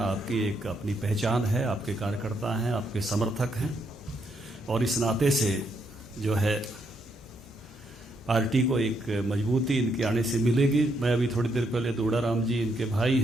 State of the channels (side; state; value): both; normal; correlation 0.76